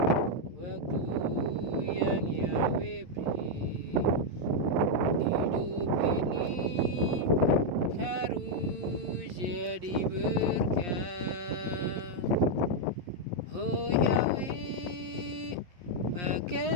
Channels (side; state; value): left; late; 11 ms